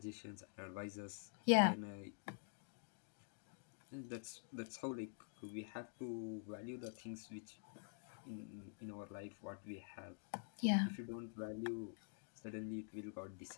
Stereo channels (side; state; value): right; silent; digital silence